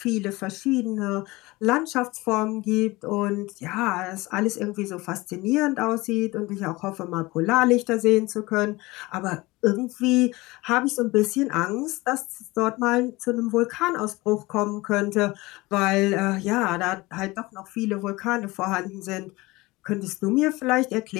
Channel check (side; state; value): right; quieter; 21.5 dB